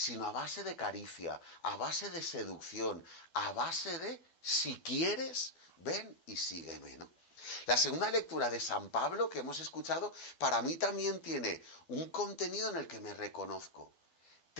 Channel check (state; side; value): late; right; 12 ms